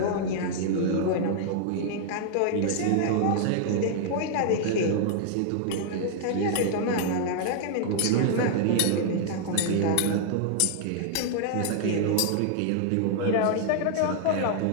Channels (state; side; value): different; both; correlation -0.01